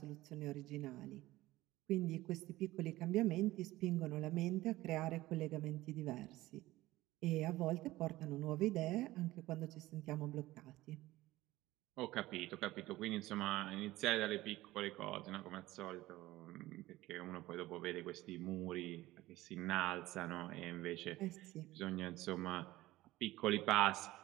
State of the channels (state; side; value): quieter; left; 17.4 dB